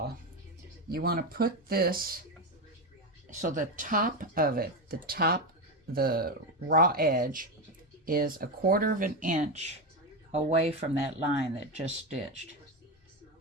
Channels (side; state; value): both; normal; correlation 0.13